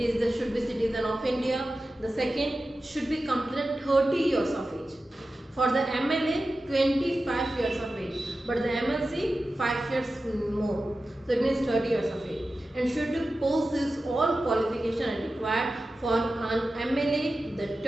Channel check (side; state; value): both; normal; correlation 0.93